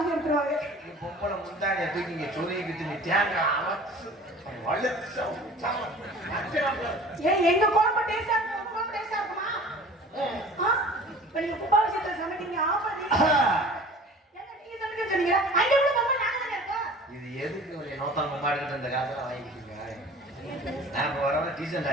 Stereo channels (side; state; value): both; normal; correlation 0.44